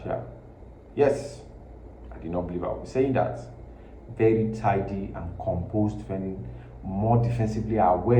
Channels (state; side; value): identical; both; correlation 1.00